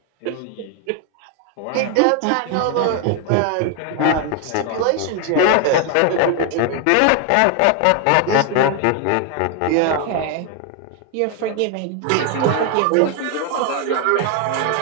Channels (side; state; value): both; different; correlation 0.01